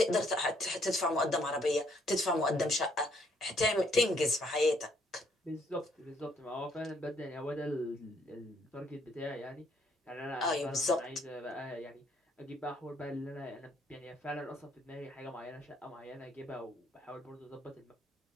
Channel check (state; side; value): normal; both; correlation 0.68